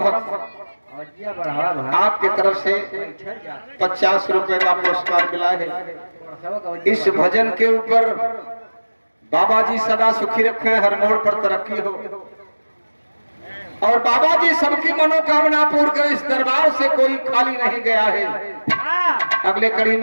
आपके तरफ से 50 रुपए का पुरस्कार मिला है। इस भजन के ऊपर बाबा जी सदा सुखी रखे, हर मोड़ पर तरक्की हो और बाबा जी सबकी मनोकामना पूर्ण कर। इस दरबार से कोई खाली नहीं गया है। अगले कड़ी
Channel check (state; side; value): inverted; both; correlation -1.00